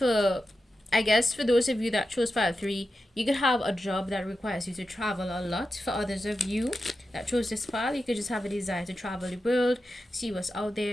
I guess for those of you that chose pile 3, you could have a job that requires you to travel a lot. For others of you that chose this pile, you could just have a desire to travel the world, see what's out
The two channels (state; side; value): normal; both; correlation 0.91